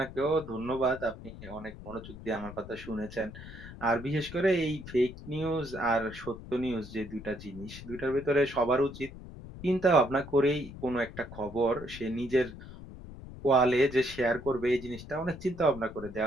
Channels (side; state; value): left; noise; rumble, 14 dB below the sound